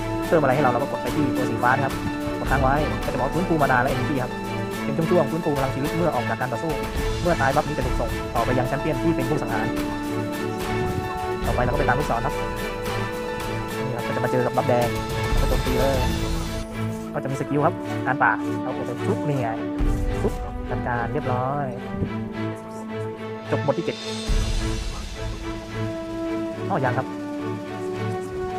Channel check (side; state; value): both; identical; correlation 1.00